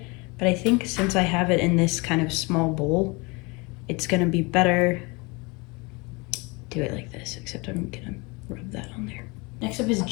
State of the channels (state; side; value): quieter; right; 27.5 dB